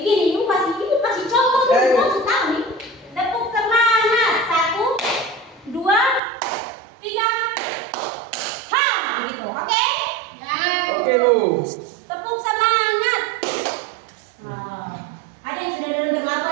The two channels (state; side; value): drops out; left; at 6.2 s